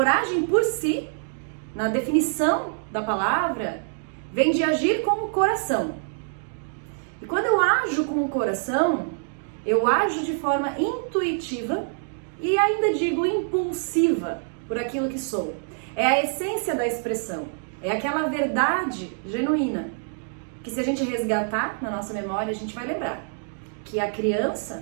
por si, na definição da palavra, vem de agir com o coração. E quando eu ajo com o coração, eu ajo de forma intuitiva e ainda digo impulsiva por aquilo que sou. É a essência da expressão, é aquela verdade genuína, que se a gente resgatar na nossa memória, a gente vai lembrar que a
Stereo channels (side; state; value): left; silent; digital silence